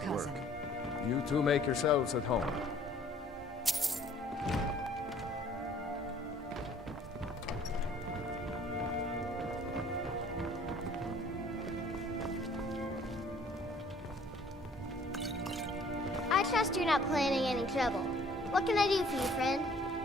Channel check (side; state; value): both; normal; correlation 0.56